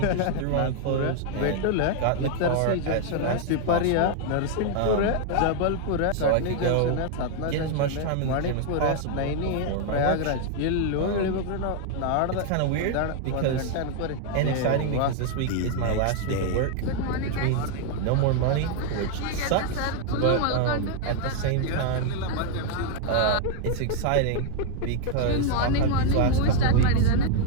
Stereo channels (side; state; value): both; different; correlation 0.00